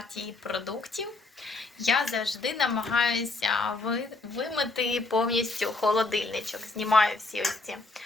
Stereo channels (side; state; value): right; quieter; 3.4 dB